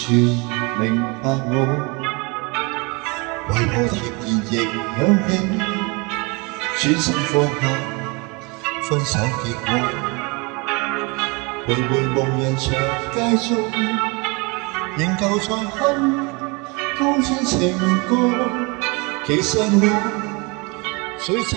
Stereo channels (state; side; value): quieter; left; 28.9 dB